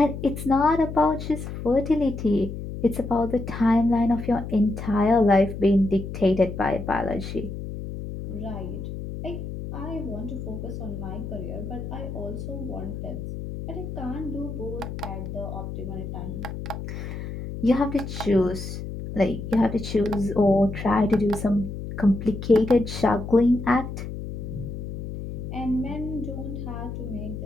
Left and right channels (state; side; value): noise; left; hum, 7 dB below the sound